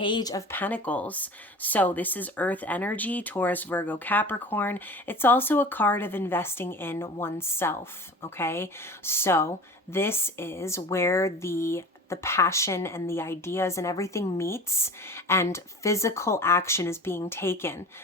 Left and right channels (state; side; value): normal; both; correlation 0.37